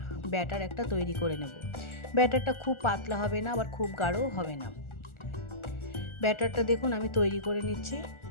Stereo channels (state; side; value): late; right; 1.4 ms